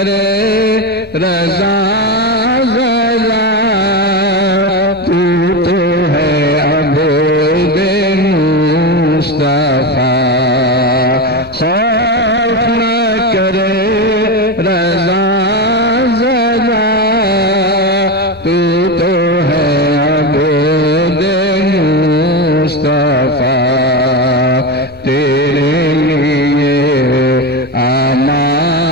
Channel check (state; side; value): normal; both; correlation 0.17